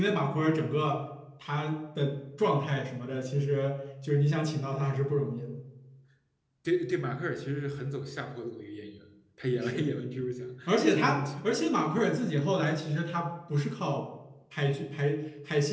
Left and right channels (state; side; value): identical; both; correlation 1.00